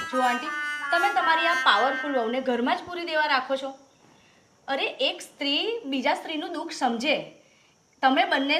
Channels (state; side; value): identical; both; correlation 1.00